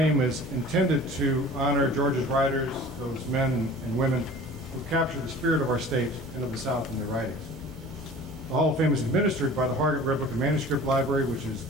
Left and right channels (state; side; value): normal; both; correlation 0.43